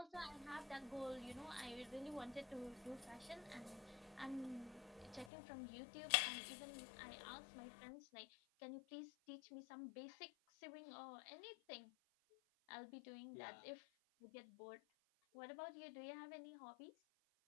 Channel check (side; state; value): right; drops out; at 5.3 s